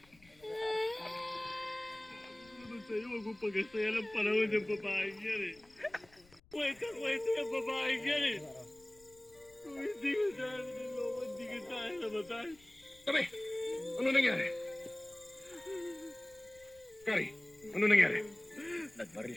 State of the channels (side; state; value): left; noise; rumble, 28 dB below the sound